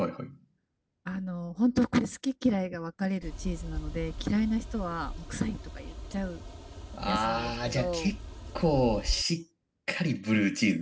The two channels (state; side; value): identical; both; correlation 1.00